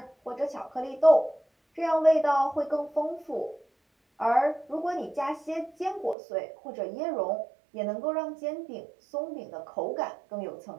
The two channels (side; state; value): left; drops out; at 6.2 s